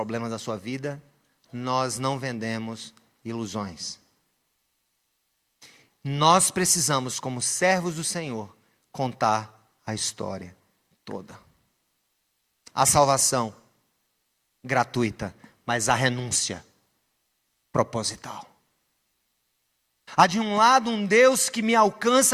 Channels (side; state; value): both; identical; correlation 1.00